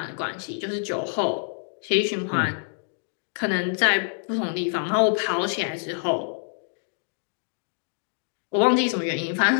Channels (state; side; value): silent; right; digital silence